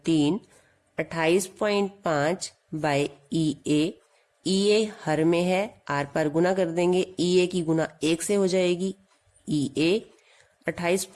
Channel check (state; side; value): identical; both; correlation 1.00